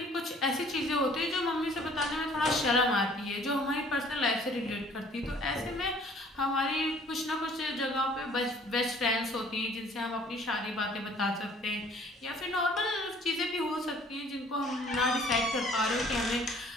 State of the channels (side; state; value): both; normal; correlation 0.55